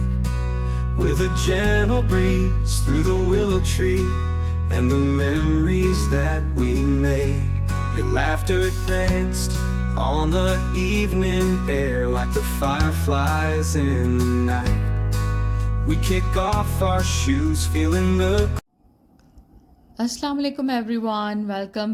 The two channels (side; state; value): both; identical; correlation 1.00